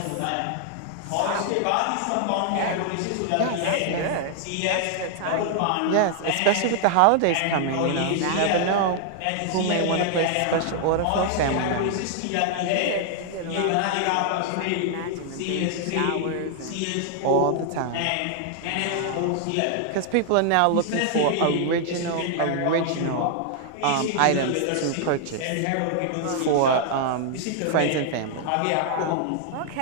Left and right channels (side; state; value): both; different; correlation 0.00